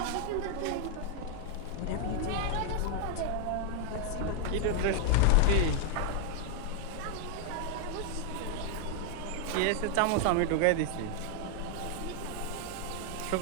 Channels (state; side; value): different; both; correlation 0.00